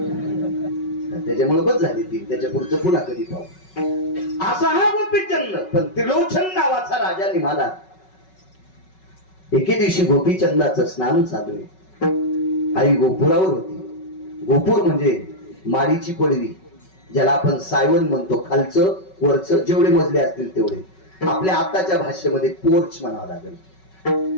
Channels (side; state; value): right; late; 5.3 ms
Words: त्याच्यामुळे बस झाली 3. त्याच्या पुढचं पुन्हा कधी पाहू. असा हा गोपीचंद. पण त्रिलोचन नावाचा राजा निघाला. एके दिवशी गोपीचंदाचं स्नान चालू आहे. आई गोपुरावर होती. गोपूर म्हणजे माडीची पडवी, ज्याला आपण सायवन म्हणतो. खालचं वरचं जेवढे मजले असतील तेवढे. आपल्या आताच्या भाषेमध्ये पोर्च म्हणावं लागेल.